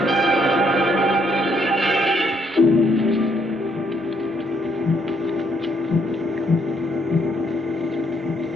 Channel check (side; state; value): both; normal; correlation 0.70